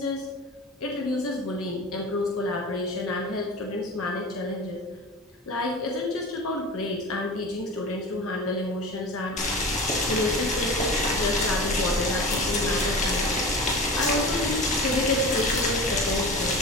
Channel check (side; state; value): both; normal; correlation 0.33